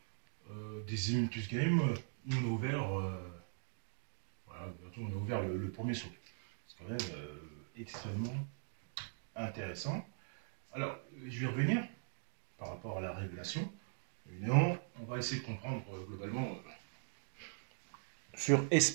des Olympus Games, on a ouvert, voilà, on a ouvert le premier saut. C'est quand même extrêmement intéressant. Alors, je vais revenir par rapport à la Révélation. Évidemment, on va essayer de comprendre globalement sur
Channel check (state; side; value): silent; left; digital silence